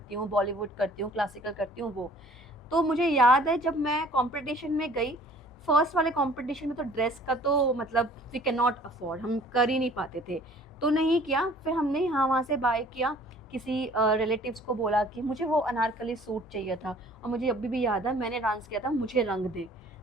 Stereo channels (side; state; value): both; normal; correlation 0.52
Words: हूँ, बॉलीवुड करती हूँ, क्लासिकल करती हूँ, वो। तो मुझे याद है जब मैं कंपटीशन में गई, फर्स्ट वाले कंपटीशन में, तो ड्रेस का तो मतलब वी कैन नॉट अफोर्ड, हम कर ही नहीं पाते थे, तो नहीं किया। फिर हमने यहाँ वहाँ से बाय किया, किसी रिलेटिव्स को बोला कि मुझे वो अनारकली सूट चाहिए था, और मुझे अभी भी याद है मैंने डांस किया था, मुझे रंग दे,